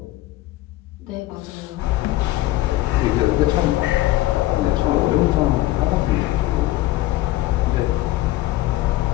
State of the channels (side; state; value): right; quieter; 16.7 dB